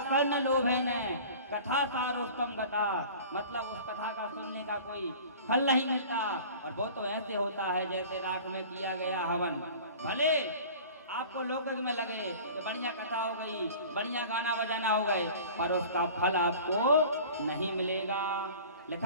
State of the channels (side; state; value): both; inverted; correlation -0.41